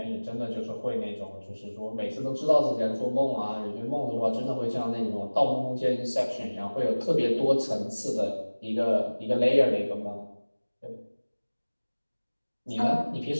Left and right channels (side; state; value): both; inverted; correlation -1.00